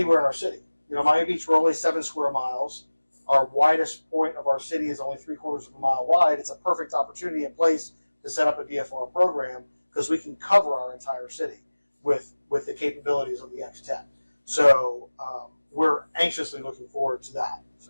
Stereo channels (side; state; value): both; inverted; correlation -1.00